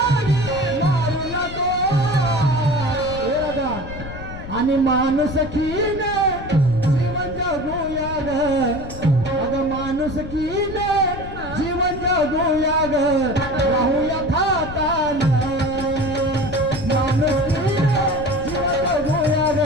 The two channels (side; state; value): left; noise; rumble, 11 dB below the sound